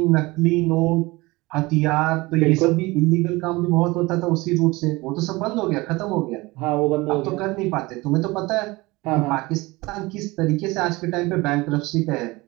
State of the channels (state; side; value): quieter; left; 22.1 dB